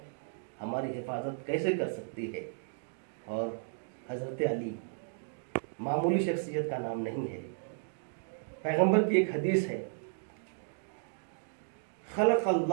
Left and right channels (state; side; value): silent; left; digital silence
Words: ہماری حفاظت کیسے کر سکتی ہے؟ اور حضرت علی معمولی شخصیت کا نام نہیں ہے۔ پیغمبر کی ایک حدیث ہے، خلق